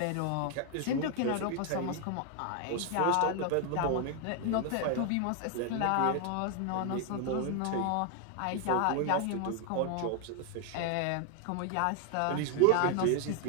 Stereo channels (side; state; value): both; different; correlation 0.01